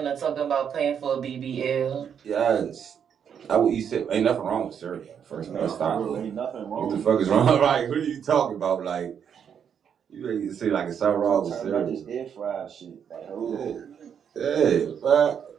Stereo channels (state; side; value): quieter; left; 7.9 dB